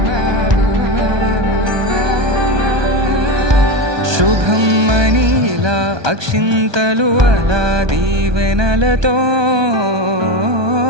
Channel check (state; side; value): late; left; 1.2 ms